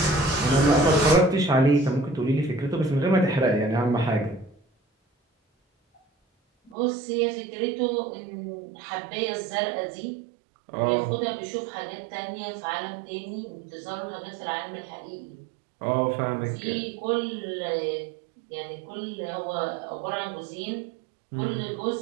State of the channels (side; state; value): left; drops out; at 6.8 s